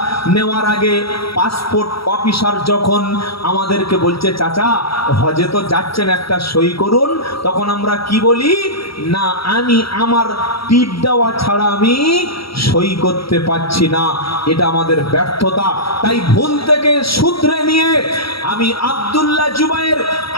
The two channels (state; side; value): late; right; 0.75 ms